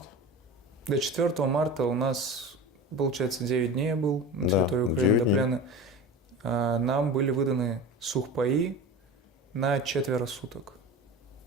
До 4 марта у нас получается, 9 дней я был на Да, территории Украины 9 до дней. плена. Нам были выданы сухпаи на 4 суток.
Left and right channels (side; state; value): both; normal; correlation 0.31